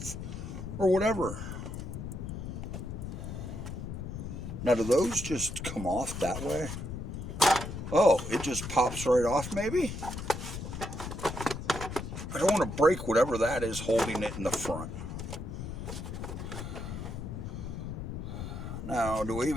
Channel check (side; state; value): left; noise; rumble, 6 dB below the sound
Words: or whatever. Now, do those just come off that way? Oh, it just pops right off, maybe? I don't want to break whatever that is holding it in the front. Now, do we